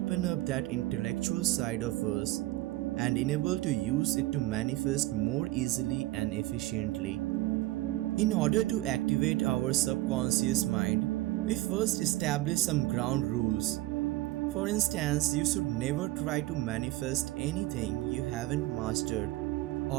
up that intellectual side of us and enable to use it to manifest more easily and efficiently. In order to activate our subconscious mind, we first establish some ground rules. For instance, you should never try to manifest anything you haven't mastered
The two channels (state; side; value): quieter; left; 17.8 dB